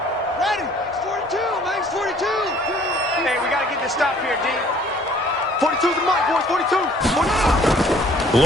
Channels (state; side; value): normal; both; correlation 0.56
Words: Ready. Max 42. Hey, we got to get this stop here, D. 42's the mic, boys. 42.